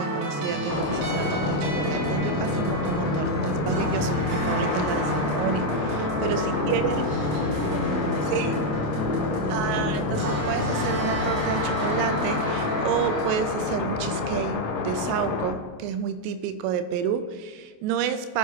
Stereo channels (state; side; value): late; left; 28 ms